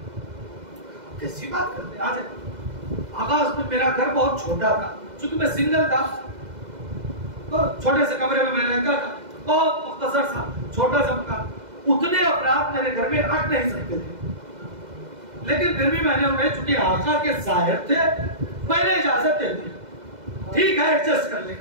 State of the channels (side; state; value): left; late; 2.0 ms